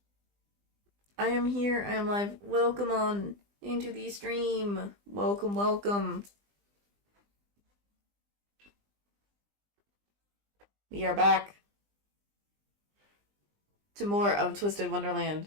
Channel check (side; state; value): left; late; 20 ms